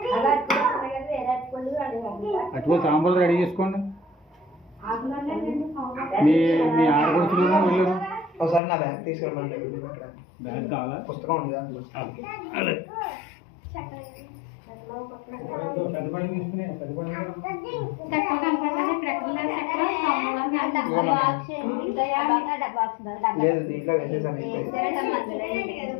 అటువంటి తాంబూలాలు రెడీ చేసుకోండి మీ మీ ఆడపడుచులు వెళ్ళరు ఒకసారి నా బ్యాగ్ తీసుకురమ్మండి బ్యాగ్ కావాలా పుస్తకం ఉంది దాంట్లో లేదు దీంట్లో వేసేసాను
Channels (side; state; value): right; drops out; at 8.6 s